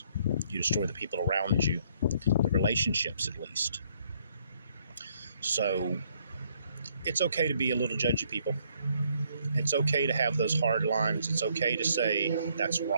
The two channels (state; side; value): inverted; both; correlation -0.68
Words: You destroy the people around you, the relationships at least. So it's okay to be a little judgy, people. It's okay to have those hard lines. It's okay to say that's